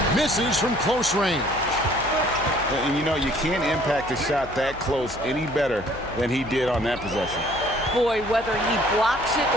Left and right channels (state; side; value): noise; left; hum, 16 dB below the sound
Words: Misses from close range. And you know, you can't impact a shot that close any better than he did on that possession. Boy, whether he blocks it